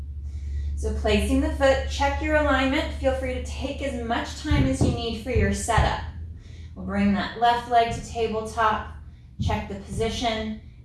So placing the foot, check your alignment. Feel free to take as much time as you need for your setup. We'll bring that left leg to tabletop, check the position,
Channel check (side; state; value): both; identical; correlation 1.00